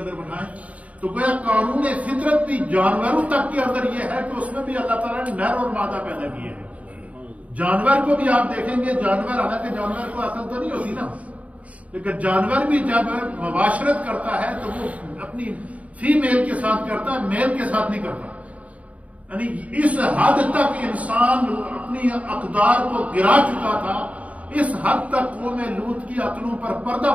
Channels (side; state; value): left; late; 0.068 ms